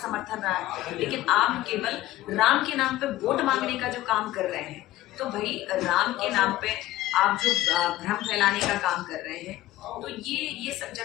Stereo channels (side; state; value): right; quieter; 15.8 dB